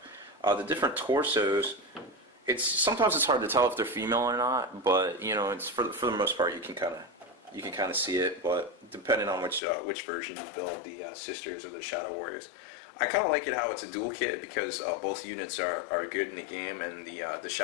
The different torsos. Sometimes it's hard to tell if they're female or not, but it's for the most part you can kind of see it. But depending on which version you build, the Sisters or the Shadow Warriors. I kind of like it how it's a dual kit because both units are good in the game, and the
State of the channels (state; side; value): drops out; right; at 9.6 s